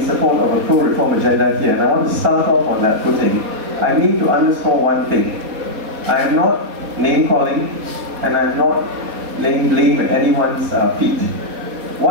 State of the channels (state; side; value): late; left; 4.4 ms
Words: support of a pro-reform agenda here, and I want to start off on that footing, I need to underscore one thing. I am not name-calling, and I'm not laying blame at anyone's feet.